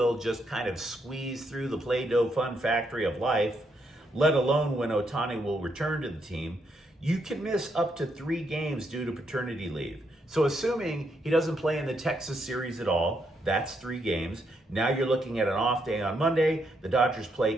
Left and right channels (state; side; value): normal; both; correlation 0.78